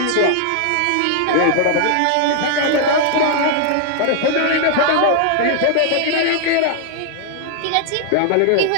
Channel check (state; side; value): different; both; correlation 0.00